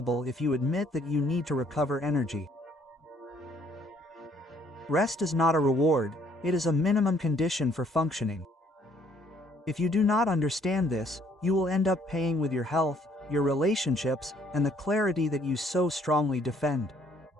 if you admit that you need to recover energy. Rest is not a reward, it is a minimum condition for functioning. If you do not understand this, you will end up paying with your health, your relationships, and the clarity that you so strongly defend.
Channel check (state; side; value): normal; both; correlation 0.64